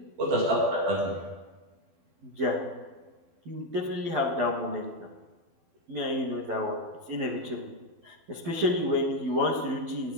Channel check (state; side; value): late; left; 12 ms